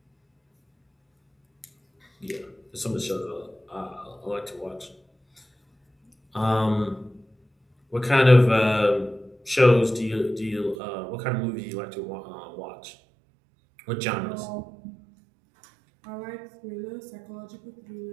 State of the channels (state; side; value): drops out; left; at 10.8 s